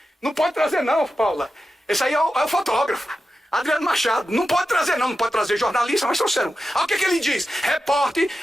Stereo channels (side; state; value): both; normal; correlation 0.91